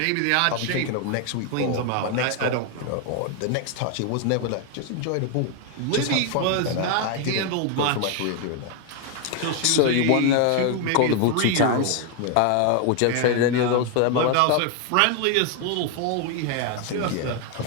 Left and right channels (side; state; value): both; different; correlation 0.01